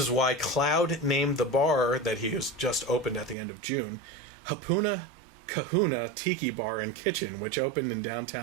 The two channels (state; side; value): drops out; left; at 3.4 s